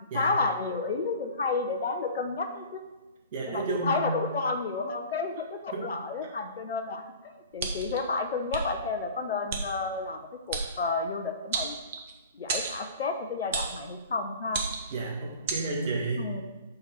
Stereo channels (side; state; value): both; inverted; correlation -0.40